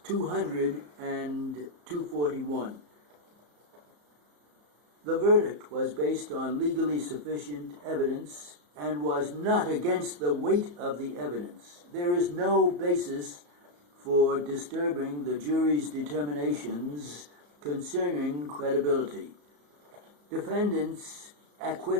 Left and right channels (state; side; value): late; left; 34 ms